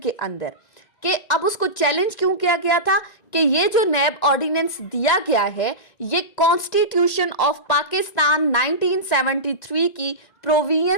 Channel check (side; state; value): right; late; 1.9 ms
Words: अंदर। कि अब उसको चैलेंज क्यों किया गया था कि ये जो नैब ऑर्डिनेंस दिया गया है ये कॉन्स्टिट्यूशन ऑफ पाकिस्तान 1973 की